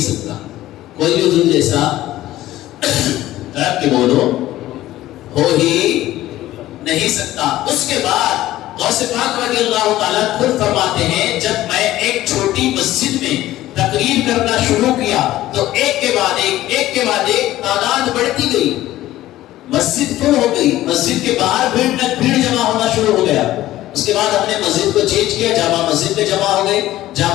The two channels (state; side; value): quieter; right; 15.1 dB